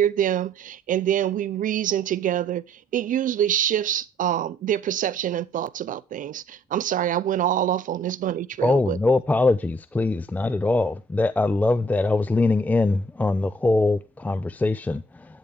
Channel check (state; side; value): normal; both; correlation 0.63